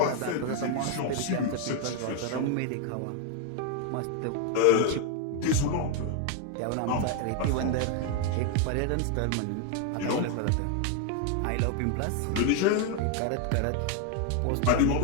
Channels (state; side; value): different; both; correlation 0.01